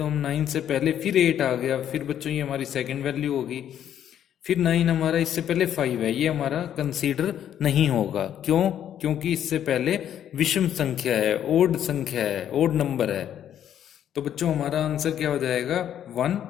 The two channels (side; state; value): right; quieter; 10.2 dB